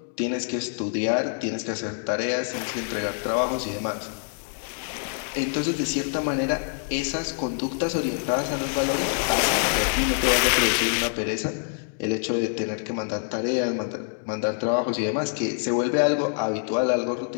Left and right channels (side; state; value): right; silent; 60 dB below the other